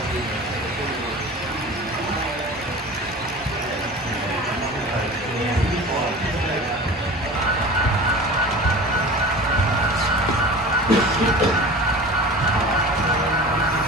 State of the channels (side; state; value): both; normal; correlation 0.37